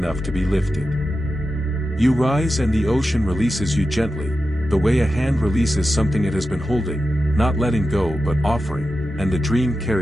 to be lifted. You rise and the ocean releases you gently, the way a hand releases something it has been holding, not letting go but offering, and the dream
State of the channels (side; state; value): both; normal; correlation 0.91